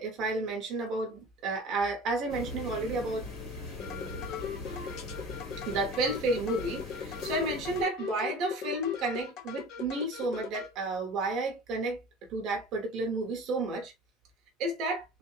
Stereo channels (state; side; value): normal; both; correlation 0.39